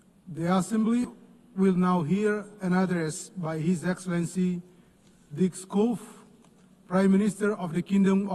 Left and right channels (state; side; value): identical; both; correlation 1.00